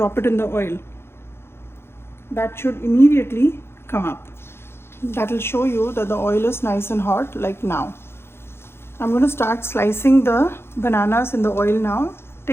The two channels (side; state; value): right; late; 0.12 ms